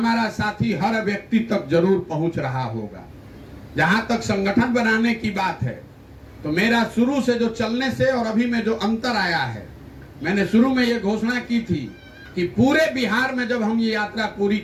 साथी हर व्यक्ति तक जरूर पहुंच रहा होगा। जहां तक संगठन बनाने की बात है तो मेरा शुरू से जो चलने से और अभी में जो अंतर आया है, मैंने शुरू में ये घोषणा की थी कि पूरे बिहार में जब हम ये यात्रा पूरी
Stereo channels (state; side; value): identical; both; correlation 1.00